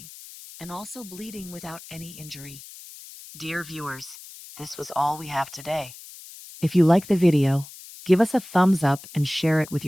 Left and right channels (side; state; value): left; noise; hiss, 17 dB below the sound